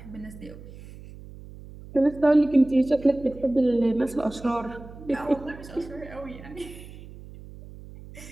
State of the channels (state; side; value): noise; right; hum, 16 dB below the sound